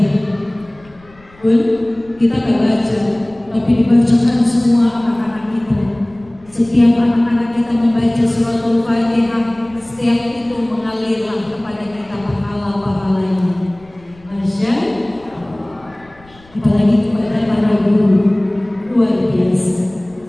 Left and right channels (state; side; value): noise; left; rumble, 27 dB below the sound